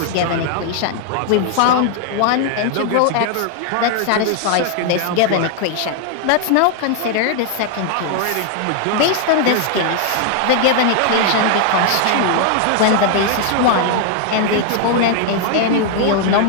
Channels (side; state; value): both; different; correlation 0.00